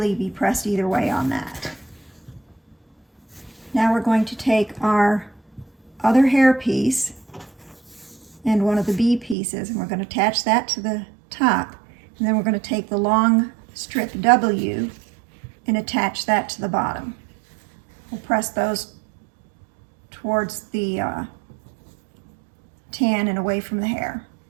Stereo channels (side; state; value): left; drops out; at 9.3 s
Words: be pressed either way on that. Now we're going to take our other hair piece and one of the B pieces, and we're going to attach that to the top, and then we're going to take the long strip W and attach that to the bottom. We'll press those towards the tan and away from the hair.